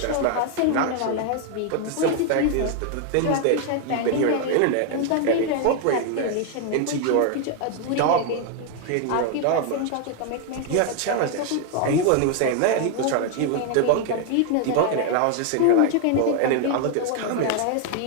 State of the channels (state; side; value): different; both; correlation 0.00